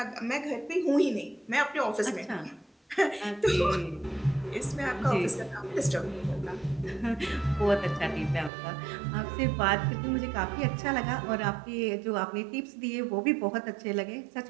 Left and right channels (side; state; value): left; drops out; at 8.5 s